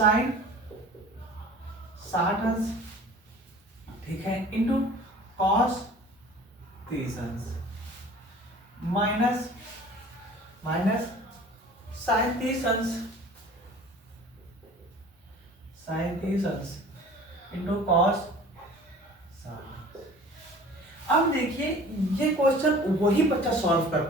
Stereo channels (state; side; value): normal; both; correlation 0.45